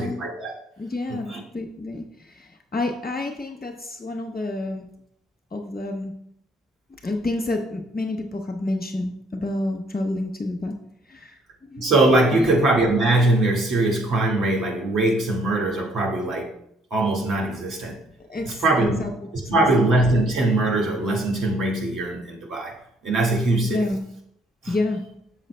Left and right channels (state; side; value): normal; both; correlation 0.65